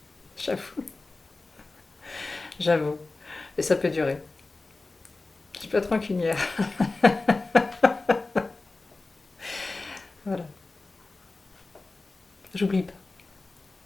J'avoue, j'avoue. Et ça peut durer. Je peux être rancunière. Voilà. J'oublie pas.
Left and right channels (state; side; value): quieter; right; 3.4 dB